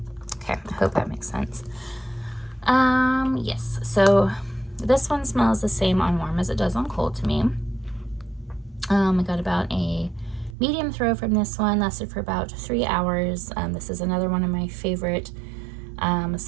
Okay, I hope that makes sense. Yes, so this one smells the same on warm as it does on cold to me. I got about a medium throw from this one, lasted for about 3 hours. This is another one of my favorite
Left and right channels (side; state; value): left; drops out; at 10.6 s